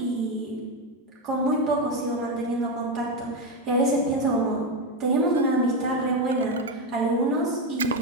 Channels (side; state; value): both; normal; correlation 0.10